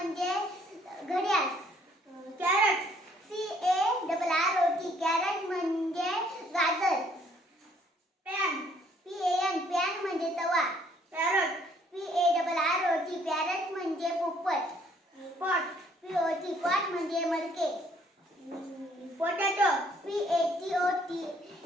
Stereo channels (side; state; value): both; normal; correlation 0.63